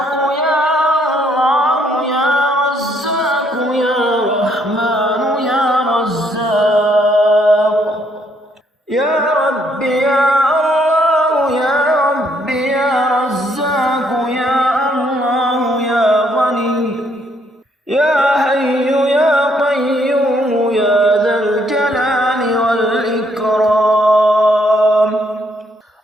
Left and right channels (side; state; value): both; normal; correlation 0.70